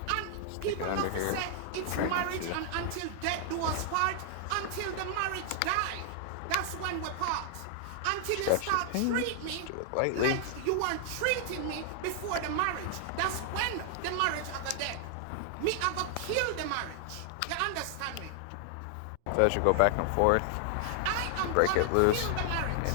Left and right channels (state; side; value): different; both; correlation 0.00